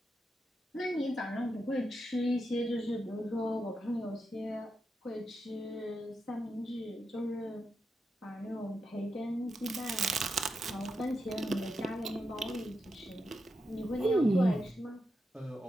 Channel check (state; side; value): normal; both; correlation 0.86